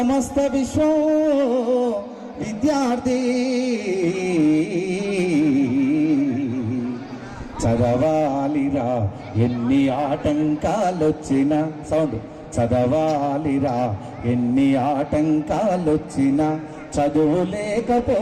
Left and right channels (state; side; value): identical; both; correlation 1.00